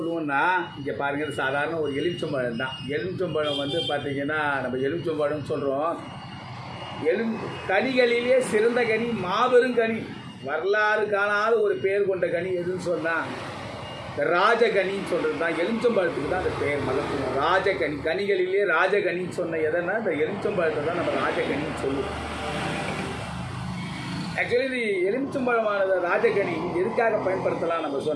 இங்கே பாருங்கள், சாதாரண ஒரு எலுமிச்சம்பழம் தான். எலுமிச்சம்பழம் வந்து பார்த்திங்கன்னா நம்ம எலுமிச்சம்பழம்னு சொல்கிறோம். கனிகளிலே சிறந்த கனி, மாபெரும் கனி, வரலாறு காணாத ஒரு பேர் கொண்ட கனி எதுன்னு சொன்னால் ராஜகனின்னு சொல்கிறது தான். எலுமிச்சம்பழத்துக்கு தான் அந்த பேர் மகத்துவம். ராஜகனி, கனிகளிலே ராஜகனின்னு சொன்ன எதனா இந்த எலுமிச்சம்பழத்தை தான் நம்ம ராஜகனின்னு சொல்லுவோம். ஆக்சுவலி இது எலுமிச்சம்பழமானது ராஜகனி எதுக்காக பயன்படுத்தலாம் நம்ம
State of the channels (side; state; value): both; identical; correlation 1.00